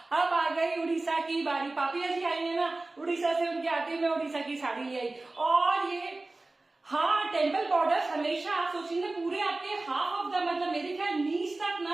अब आ गई उड़ीसा की बारी, पापिया जी आई है ना उड़ीसा से, उनके आते मैं उड़ीसा की साड़ी ले आई। और ये हाँ टेम्पल बॉर्डर हमेशा आप सोचेंगे पूरे आपके हाफ ऑफ द मतलब मेरे ख्याल नीच तक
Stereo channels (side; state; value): left; quieter; 3.1 dB